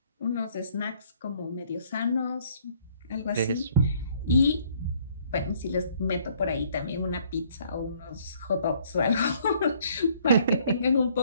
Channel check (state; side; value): inverted; both; correlation -0.62